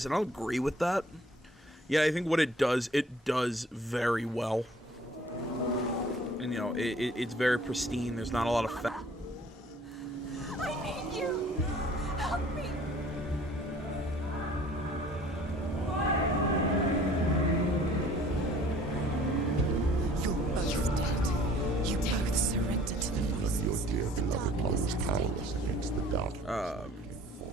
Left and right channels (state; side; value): normal; both; correlation 0.53